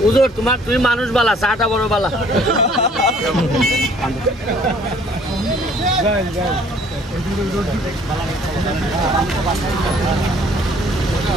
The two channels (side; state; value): both; normal; correlation 0.57